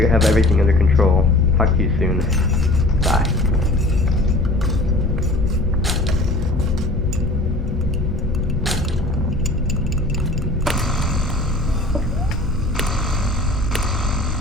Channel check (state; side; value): noise; left; rumble, 7 dB below the sound